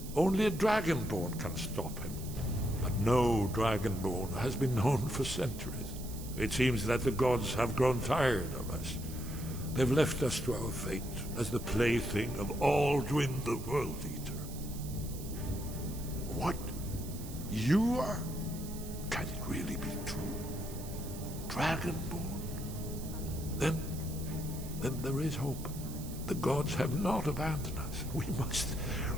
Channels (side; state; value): right; noise; hiss, 14 dB below the sound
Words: Only a dragonborn can stop him. But no dragonborn has been known for centuries. It seems that the gods have grown tired of us. They've left us to our fate as the plaything of Alduin the World Eater. What? You are? Can it really be true? Dragonborn? Then there is hope. The gods have not abandoned us.